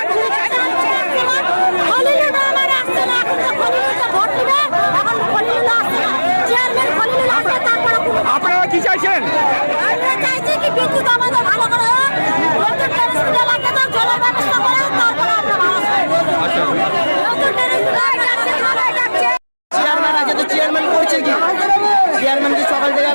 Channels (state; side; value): inverted; both; correlation -1.00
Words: আপনারা কি চাইছেন? চেয়ারম্যান আছে তো চেয়ারম্যান করছে কি? চেয়ারম্যান কি সকাল থেকে